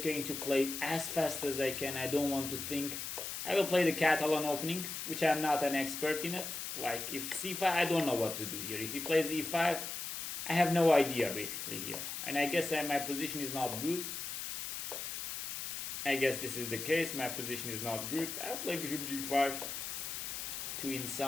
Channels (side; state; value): left; noise; hiss, 5 dB below the sound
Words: going to play as fast as I can. I don't want to think. I will play the Catalan opening, which I'm not an expert in it. Like if c5, I don't know what to do here. If he plays e5, I have no idea basically here. And I guess my position is not good. I guess this is the case. My position is not good. I'll play bishop g5 to, in